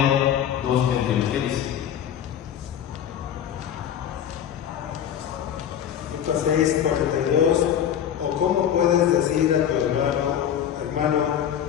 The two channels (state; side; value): quieter; right; 9.5 dB